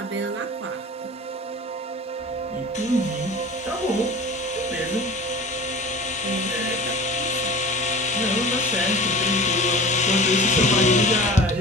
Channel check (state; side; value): normal; both; correlation 0.38